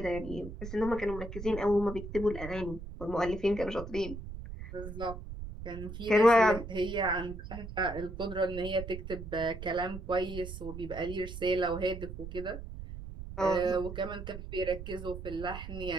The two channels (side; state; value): right; noise; rumble, 9 dB below the sound